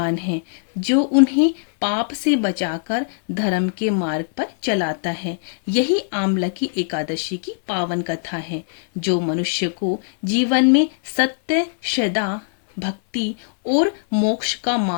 है, जो उन्हें पाप से बचाकर धर्म के मार्ग पर चलाता है। यही आमलकी एकादशी की पावन कथा है, जो मनुष्य को जीवन में सत्य, श्रद्धा, भक्ति और मोक्ष का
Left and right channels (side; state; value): right; silent; digital silence